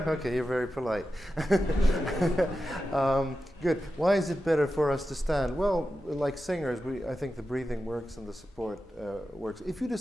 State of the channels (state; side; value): normal; both; correlation 0.91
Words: Okay, you're very polite. Good. Why is it better for us to stand? Well, like singers, I think the breathing works and the support works. If you